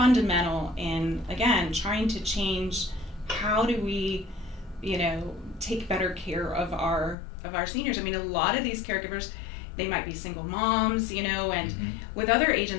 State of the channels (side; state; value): right; drops out; at 7.2 s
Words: in, again, trying to change how do we, take better care of our seniors. I mean, a lot of these caregivers, they might be single moms, and Mm-hmm. with other